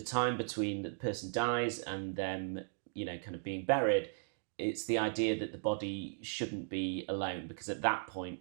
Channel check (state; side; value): silent; left; digital silence